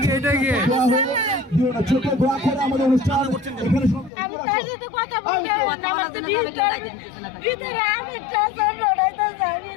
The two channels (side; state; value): right; drops out; at 4.1 s